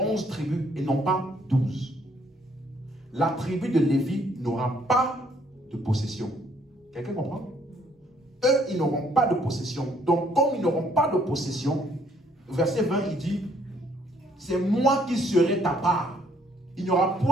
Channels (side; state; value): both; normal; correlation 0.65